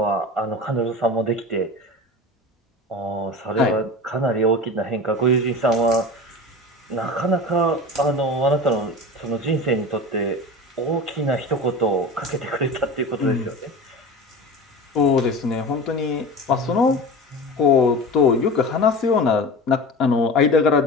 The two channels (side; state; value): both; normal; correlation 0.32